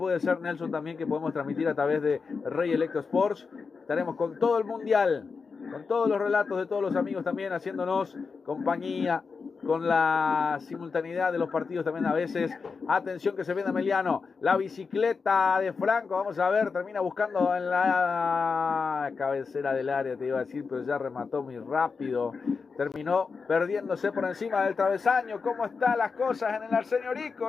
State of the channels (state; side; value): quieter; right; 5.0 dB